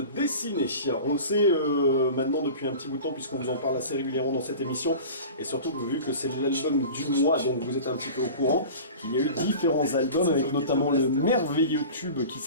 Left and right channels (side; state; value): both; inverted; correlation -0.37